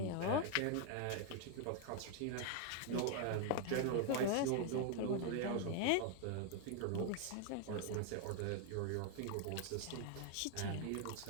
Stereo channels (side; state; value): both; different; correlation 0.00